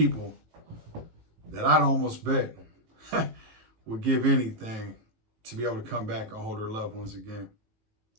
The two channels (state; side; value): late; left; 18 ms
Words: that I'd almost bet would give anything to be able to come back and hold their loved ones again.